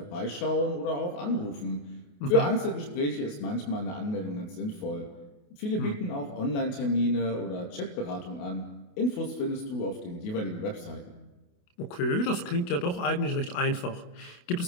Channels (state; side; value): late; right; 28 ms